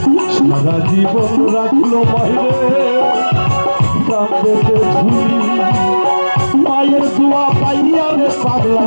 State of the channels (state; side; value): inverted; both; correlation -1.00